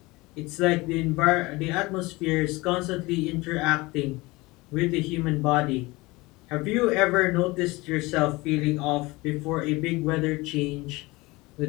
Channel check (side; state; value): right; quieter; 22.4 dB